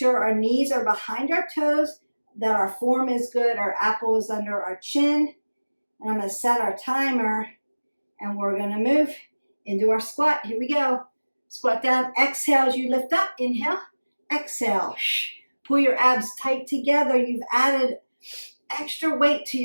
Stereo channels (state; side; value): inverted; both; correlation -1.00